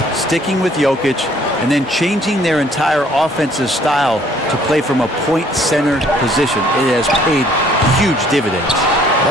sticking with Jokic and then changing their entire offensive style to play from a point center position. It has paid huge dividends.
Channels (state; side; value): normal; both; correlation 0.60